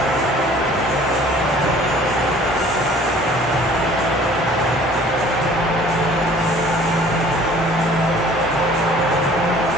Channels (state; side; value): normal; both; correlation 0.52